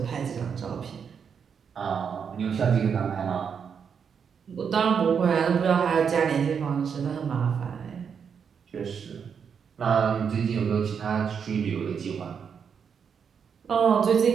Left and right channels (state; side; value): quieter; left; 6.9 dB